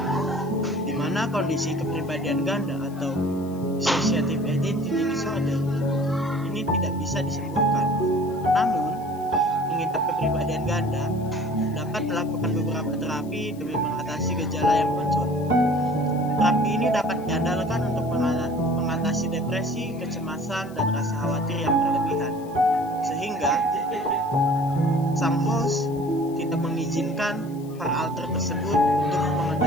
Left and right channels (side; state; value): left; noise; hiss, 25 dB below the sound